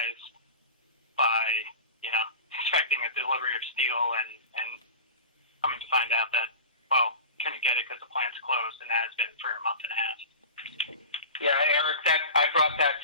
by expecting a delivery of steel and coming to find out that, well, couldn't get it because the plant's closed, and has been for a month and a half. Yeah, Eric, I brought that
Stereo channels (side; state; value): both; inverted; correlation -0.34